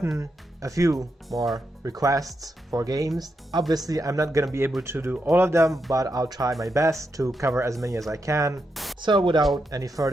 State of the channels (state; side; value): normal; both; correlation 0.84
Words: a few more requests for games. Obviously I'm not gonna be able to do all of them, but I'll try my best to cover as many as I can. So without any